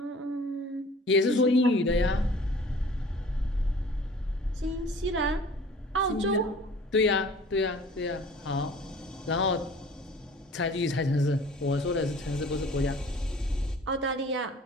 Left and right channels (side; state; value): both; normal; correlation 0.48